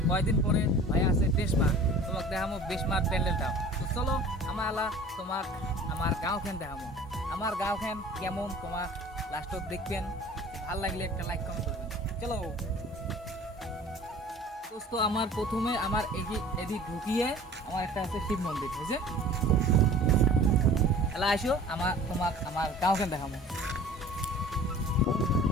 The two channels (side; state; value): both; normal; correlation 0.45